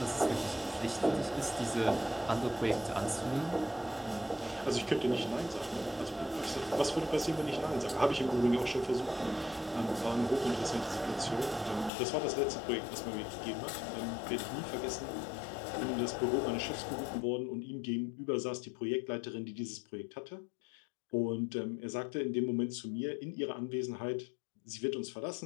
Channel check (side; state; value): right; drops out; at 11.9 s